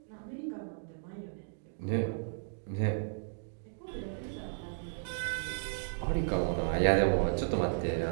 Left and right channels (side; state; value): left; silent; digital silence